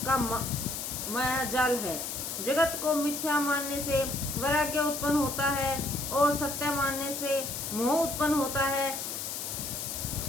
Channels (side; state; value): left; noise; hiss, 5 dB below the sound